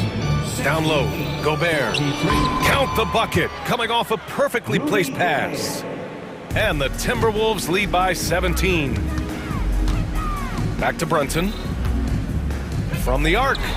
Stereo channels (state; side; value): identical; both; correlation 1.00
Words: Down low, Gobert. Count the bucket, coming off a perfectly placed pass. And the Timberwolves lead by 17. Back to Brunson. From the arc.